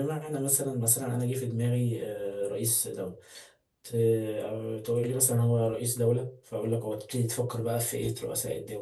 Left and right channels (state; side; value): identical; both; correlation 1.00